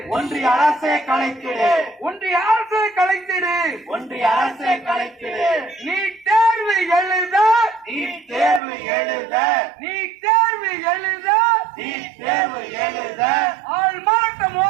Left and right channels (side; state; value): left; drops out; at 8.6 s